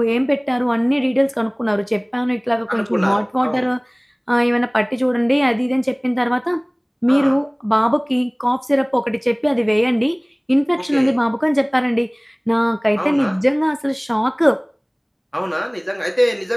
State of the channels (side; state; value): both; identical; correlation 1.00